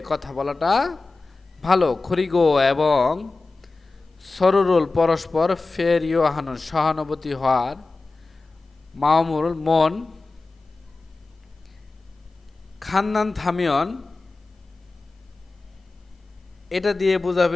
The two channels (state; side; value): quieter; right; 3.5 dB